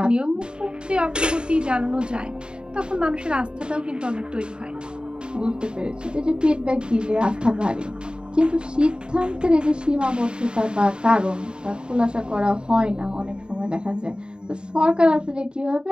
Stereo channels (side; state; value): left; late; 0.050 ms